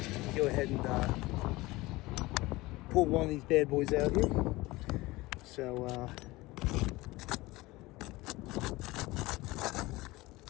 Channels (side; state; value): right; quieter; 20.6 dB